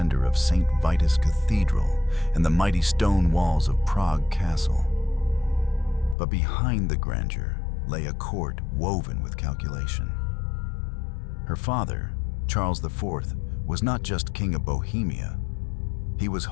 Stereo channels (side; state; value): right; drops out; at 6.2 s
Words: of St. Vitus Cathedral and the mighty stone walls of Prague Castle. But behind the grandeur lay a court woven with calculation. Her father, Charles IV, was not just king of Bohemia. He was